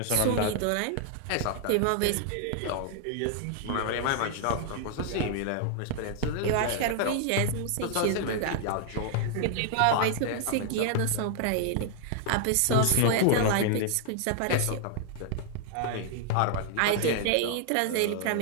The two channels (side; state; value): both; different; correlation 0.00